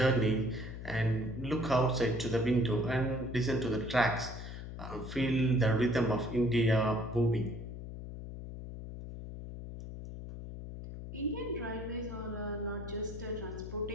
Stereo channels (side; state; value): left; noise; hum, 9 dB below the sound